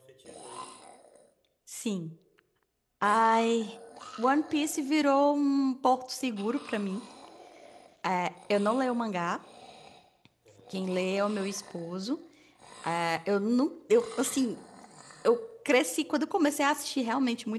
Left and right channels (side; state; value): both; identical; correlation 1.00